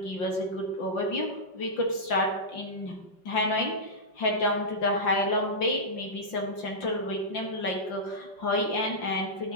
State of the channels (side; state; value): right; late; 5.7 ms